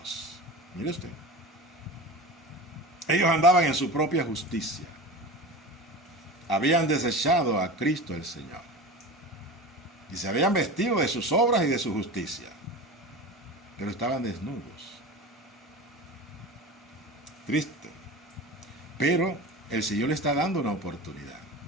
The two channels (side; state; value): both; normal; correlation 0.31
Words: Mire usted. Ellos andaban en su propia justicia. Habían desechado a Cristo el Señor. Y se habían vestido de sus obras y de su justicia. Pero estaban desnudos. Triste. Pero el Señor le está dando una oportunidad.